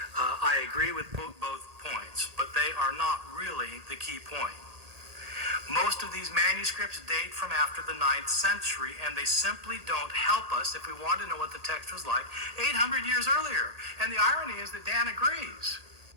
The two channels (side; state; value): left; late; 1.8 ms